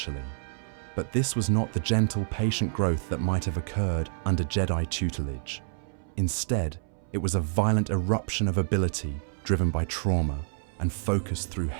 But this was not the gentle, patient growth that might have occurred under Jedi tutelage. Instead, it was a violent eruption of ability driven by trauma and focused through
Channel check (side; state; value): left; silent; 59 dB below the other